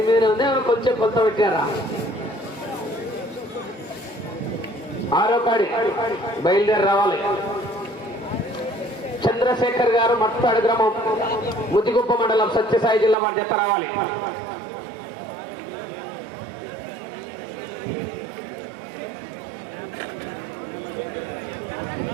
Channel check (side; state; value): left; drops out; at 13.2 s